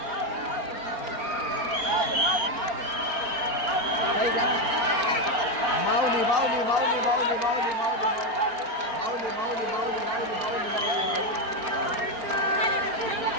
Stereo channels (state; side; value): late; left; 4.4 ms